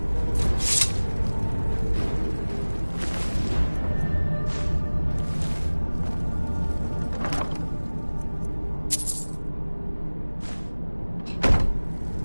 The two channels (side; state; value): both; inverted; correlation -1.00